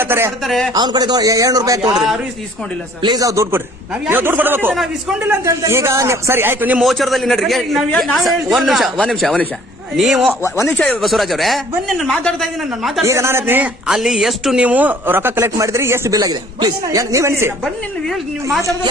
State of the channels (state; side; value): normal; both; correlation 0.55